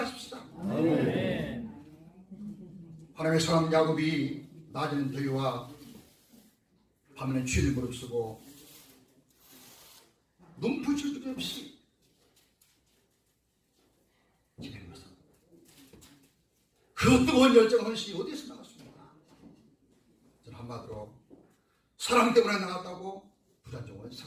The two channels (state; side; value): identical; both; correlation 1.00